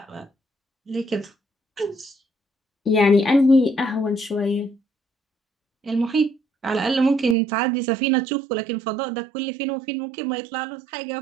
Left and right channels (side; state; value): left; drops out; at 7.4 s